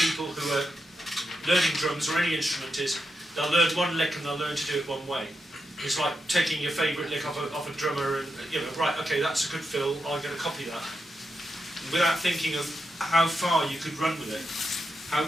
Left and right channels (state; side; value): normal; both; correlation 0.86